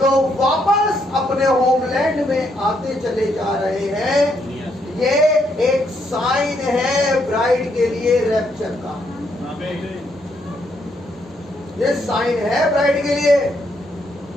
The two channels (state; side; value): normal; both; correlation 0.74